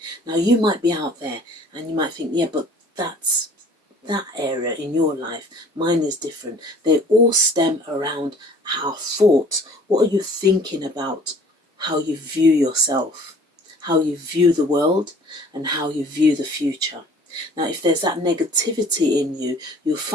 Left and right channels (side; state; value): both; normal; correlation 0.52